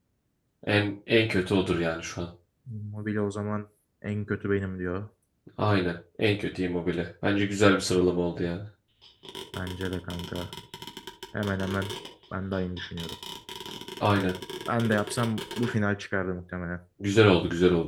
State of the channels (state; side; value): identical; both; correlation 1.00